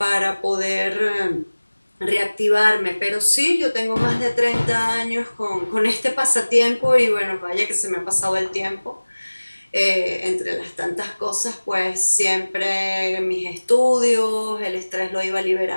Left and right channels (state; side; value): inverted; both; correlation -1.00